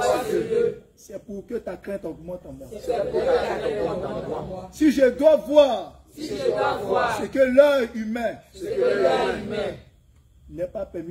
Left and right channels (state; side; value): identical; both; correlation 1.00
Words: ce lieu, c'est pour que ta crainte augmente en moi. c'est pour que ta crainte augmente en moi. Si je dois voir Si je dois voir ce que l'œil humain ce que l'œil humain n'est pas